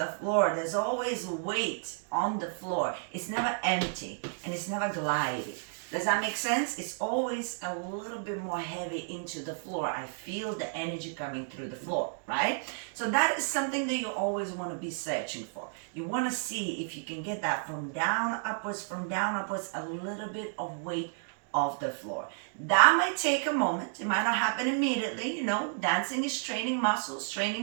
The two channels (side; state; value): left; silent; digital silence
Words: floor. There's always weight on the floor. It's never empty and it's never gliding. Does that make sense? It's always a little bit more heavy into the floor. I feel the energy coming through the floor, right? So that is something that you always want to be searching for. You want to see if you can get that from down upwards, a little bit of weight off the floor. That might take a moment. It might not happen immediately. Dancing is training muscles,